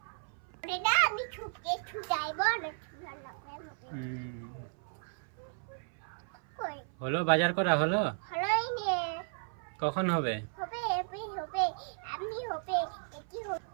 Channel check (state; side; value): silent; left; 55 dB below the other